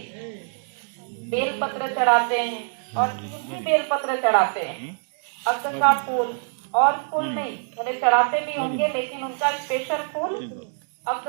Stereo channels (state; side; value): silent; left; digital silence